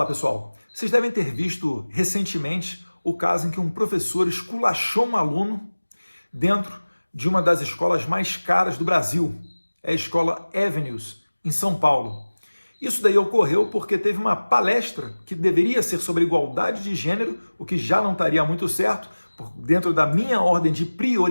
pessoal, vocês devem ter visto recentemente o caso em que um professor esculachou um aluno dentro de uma das escolas mais caras do Brasil, é a escola Avenues, em São Paulo. Isso daí ocorreu porque teve uma palestra que deveria ser sobre igualdade de gênero, o que já não estaria muito certo, dentro da minha ordem de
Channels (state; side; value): inverted; both; correlation -1.00